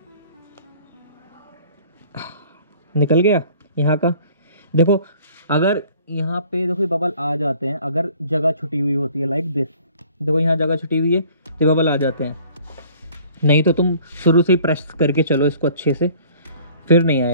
निकल गया यहाँ का। देखो अगर यहाँ पे देखो बबल आ जाते हैं, अगर जगह छुटी हुई होती है लाइक दिस, देखो यहाँ जगह छुटी हुई है तो बबल आ जाते हैं, नहीं तो तुम शुरू से ही प्रेस करके चलो इसको अच्छे से, फिर नहीं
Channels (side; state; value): both; inverted; correlation -0.53